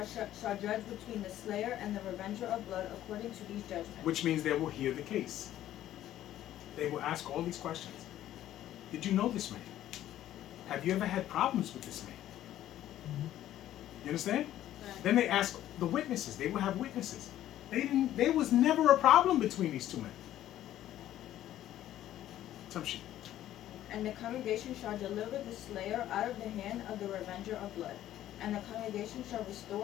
judge between the slayer and the revenger of blood according to these judgments. Which means they will hear the case. They will ask all these questions. Did you know this man? Have you ever had problems with this man? You understand? Right. Then they ask the witnesses. They will have witnesses. There was never a problem between these two men. Assumption. And the congregation shall deliver the slayer out of the hand of the revenger of blood. And the congregation shall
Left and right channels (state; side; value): quieter; right; 12.8 dB